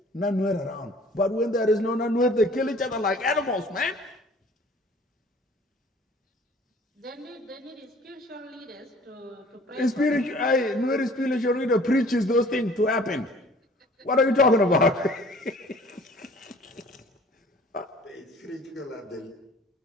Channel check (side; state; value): both; normal; correlation 0.51